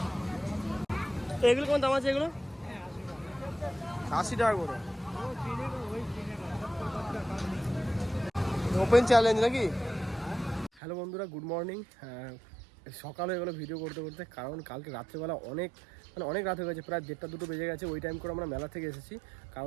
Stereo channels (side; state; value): left; drops out; at 10.7 s